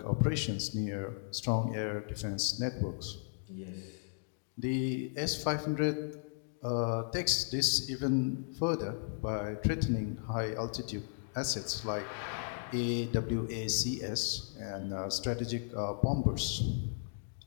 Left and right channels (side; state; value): right; silent; digital silence